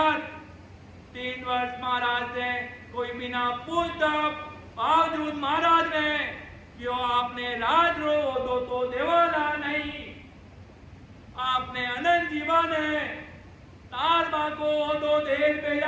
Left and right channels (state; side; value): identical; both; correlation 1.00